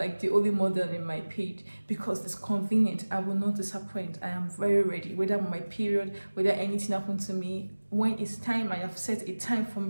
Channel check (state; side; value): inverted; both; correlation -1.00